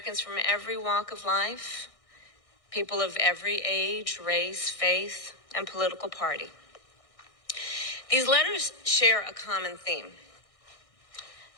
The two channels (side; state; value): right; late; 1.6 ms